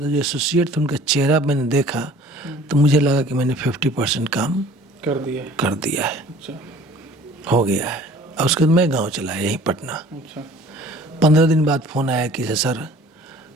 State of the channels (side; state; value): both; normal; correlation 0.50